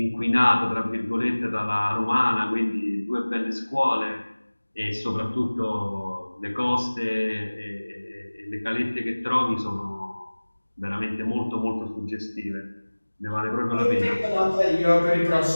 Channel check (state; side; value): inverted; both; correlation -1.00